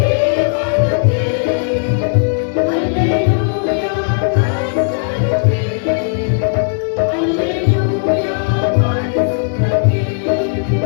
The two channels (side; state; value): right; silent; 58 dB below the other